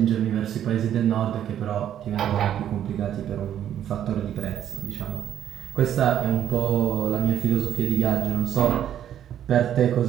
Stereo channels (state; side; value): quieter; left; 10.4 dB